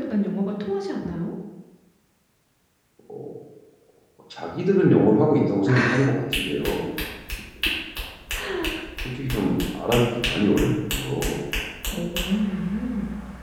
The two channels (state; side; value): identical; both; correlation 1.00